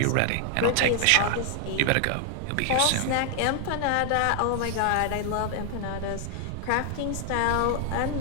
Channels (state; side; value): different; both; correlation 0.00